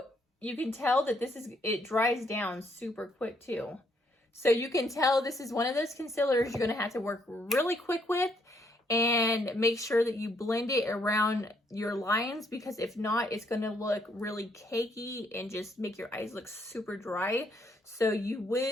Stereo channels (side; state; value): both; normal; correlation 0.71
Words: you can tell that it dries down super quick too. So you can tell this is one of those concealers you're gonna have to work really quick with and make sure that you blend it around your lines, because if not, it's gonna look really cakey and just make your eyes look super dry. So you